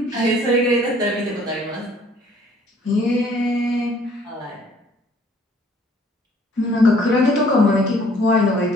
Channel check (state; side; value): normal; both; correlation 0.58